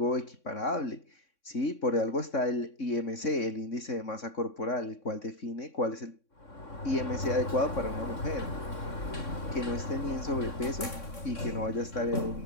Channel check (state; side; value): late; right; 3.6 ms